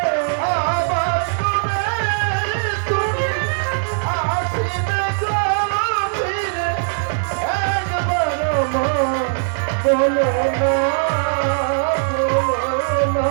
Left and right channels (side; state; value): left; silent; digital silence